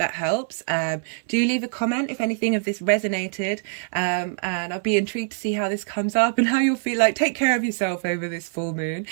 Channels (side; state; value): left; silent; 63 dB below the other